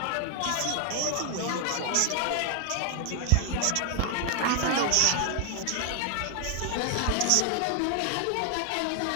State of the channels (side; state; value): both; different; correlation 0.00